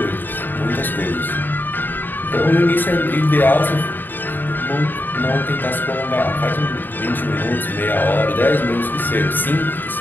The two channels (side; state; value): right; late; 0.092 ms